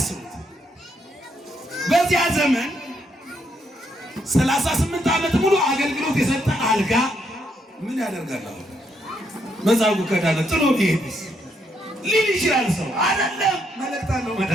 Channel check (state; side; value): normal; both; correlation 0.76